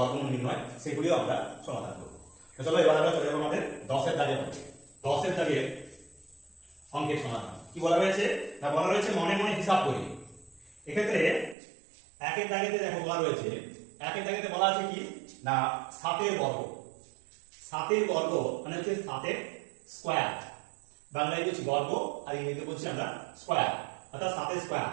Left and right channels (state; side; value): drops out; left; at 11.6 s